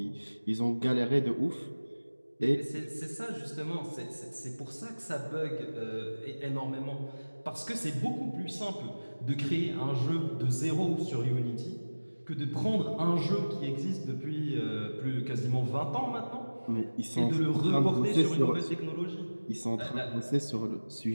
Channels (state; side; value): inverted; both; correlation -1.00